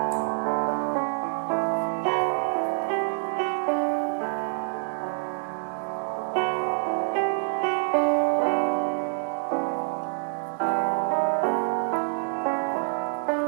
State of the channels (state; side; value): silent; left; 56 dB below the other